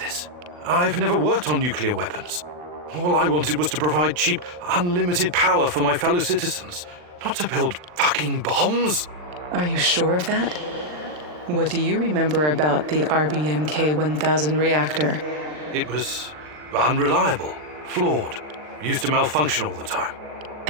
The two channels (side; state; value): left; late; 40 ms